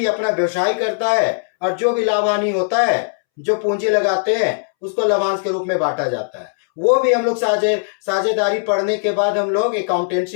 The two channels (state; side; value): silent; right; 66 dB below the other